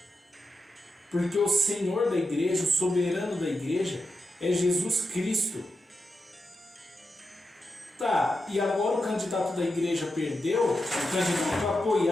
Porque o Senhor da igreja, o soberano da igreja, é Jesus Cristo. Tá, e agora o candidato da igreja perdeu, o candidato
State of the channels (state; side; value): normal; both; correlation 0.87